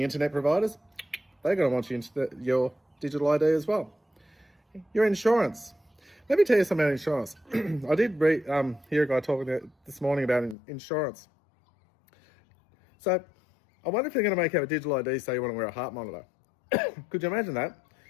internet providers, they're going to want your digital ID as well. Your insurance. Let me tell you something about insurance. I did hear a guy talking this morning about insurance. So I wonder if you're going to make out a digital ID so you want to wear a heart monitor. Could you imagine that?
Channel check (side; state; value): right; drops out; at 10.6 s